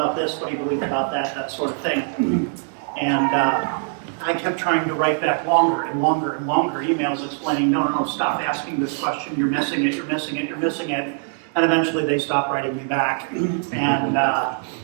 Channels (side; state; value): left; silent; digital silence